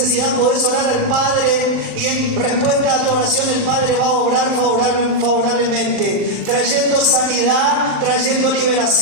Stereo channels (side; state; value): left; late; 39 ms